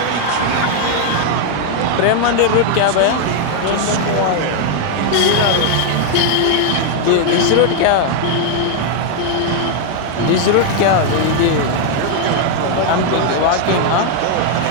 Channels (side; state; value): both; different; correlation 0.00